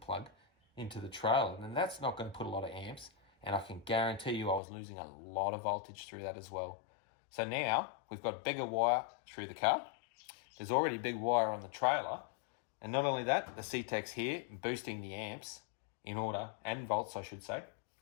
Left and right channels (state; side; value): drops out; right; at 4.6 s